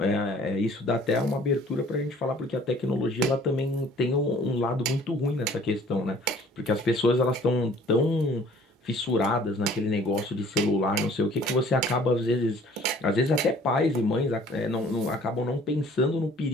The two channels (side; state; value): both; normal; correlation 0.53